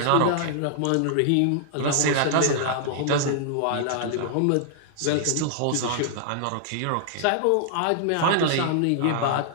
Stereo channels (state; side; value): different; both; correlation -0.01